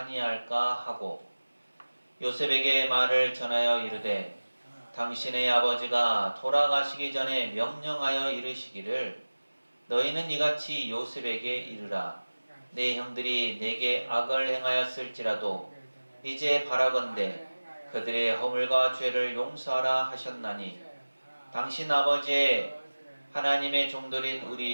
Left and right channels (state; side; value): inverted; both; correlation -1.00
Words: 하고 요셉에게 말을 전하여 이르되 당신의 아버지가 돌아가시기 전에 명령하여 이르시기를 너희는 이같이 요셉에게 이르라. 내 형들이 내게 악을 행하였을지라도 이제 바라건대 그들의 허물과 죄를 용서하라 하셨나니 당신 아버지의 하나님의 종들인